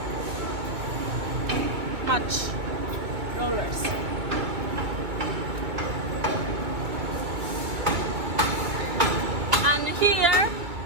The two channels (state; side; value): late; left; 2.2 ms